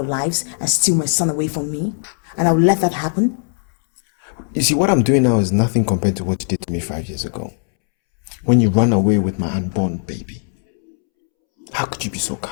lives and steal my son away from me? And I will let that happen? You see, what I'm doing now is nothing compared to what you did to me 5 years ago. When you ran away with my unborn baby. How could you be so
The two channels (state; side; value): silent; right; 67 dB below the other